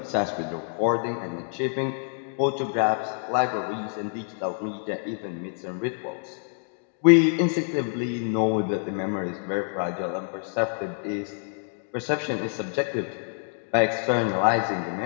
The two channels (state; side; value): silent; right; 60 dB below the other